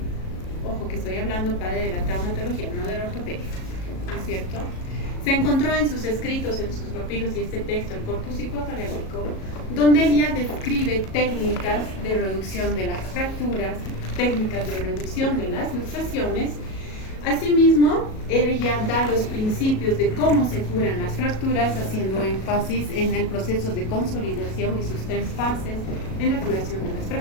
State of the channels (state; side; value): late; right; 37 ms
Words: Ojo que estoy hablando padre de la traumatología, no de la ortopedia, ¿no es cierto? Se encontró en sus escritos, en sus papiros y este texto, el Corpus Hippocraticum, donde él ya describe técnicas de reducción de las fracturas, técnicas de reducción de las luxaciones. Asimismo, él ya da los principios de cómo se curan las fracturas, haciendo énfasis en el proceso de consolidación y sus 3 fases en la curación de las